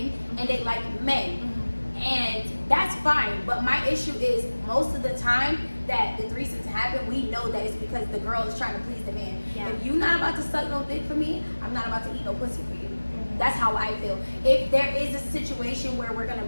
and they like men. And that's fine. But my issue is most of the time that the threesomes happen, we know that it's because the girl is trying to please the man. Yeah. If you're not about to suck no dick for me, I'm not about to eat no pussy for you. That's how I feel. If there is a situation where we're gonna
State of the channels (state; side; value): inverted; both; correlation -1.00